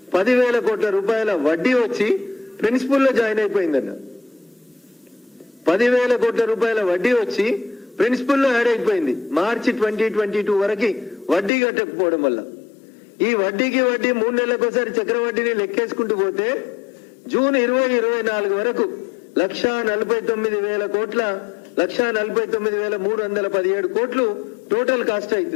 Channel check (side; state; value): right; drops out; at 11.5 s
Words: 10,000 కోట్ల రూపాయల వడ్డీ వచ్చి ప్రిన్సిపల్ లో జాయిన్ అయిపోయిందన్న. 10,000 కోట్ల రూపాయల వడ్డీ వచ్చి ప్రిన్సిపల్ లో యాడ్ అయిపోయింది మార్చి 2022 వరకు వడ్డీ కట్టకపోవడం వల్ల. ఈ వడ్డీకి వడ్డీ 3 నెలలకోసారి చక్రవడ్డీని లెక్కేసుకుంటూ పోతే జూన్ 2024 వరకు 1,49,000 కోట్ల 1,49,317 కోట్లు టోటల్ కాస్ట్